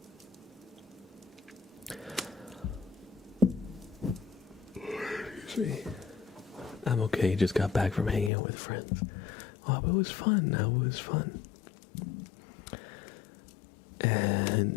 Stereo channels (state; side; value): drops out; right; at 8.3 s